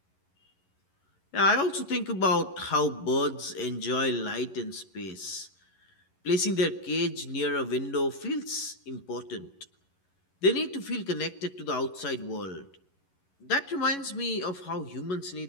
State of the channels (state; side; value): late; right; 11 ms